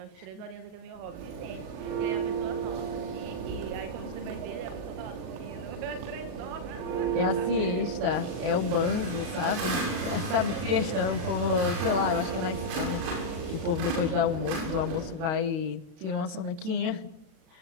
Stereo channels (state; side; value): late; left; 38 ms